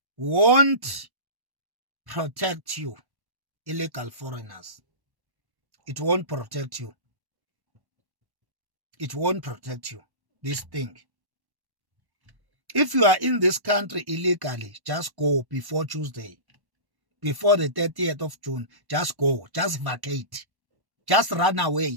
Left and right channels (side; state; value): left; late; 1.1 ms